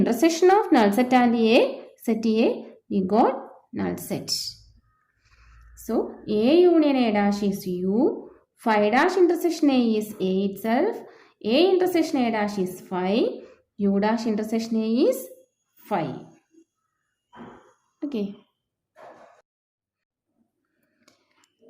of null set and A, set A, we got null set. So A union A dash is U. Phi dash intersection A is A itself. A intersection A dash is phi. U dash intersection A is phi. Okay.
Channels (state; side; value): identical; both; correlation 1.00